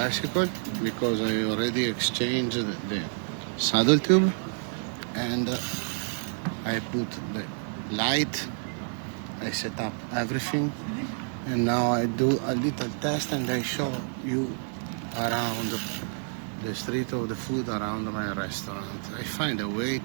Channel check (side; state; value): left; silent; 59 dB below the other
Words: because I already exchanged the saddle tube, and I put the light, I set up everything, and now I do a little test and I show you around the street of the food around my restaurant. I find a way